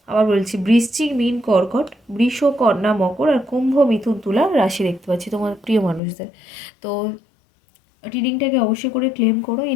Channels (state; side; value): drops out; right; at 6.0 s